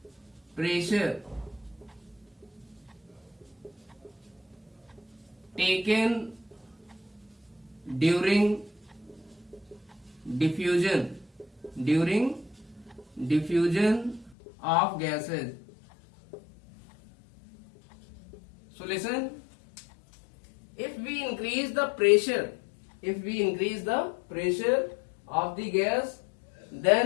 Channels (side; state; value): right; drops out; at 14.4 s